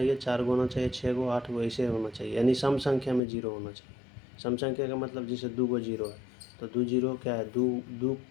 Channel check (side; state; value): right; drops out; at 3.2 s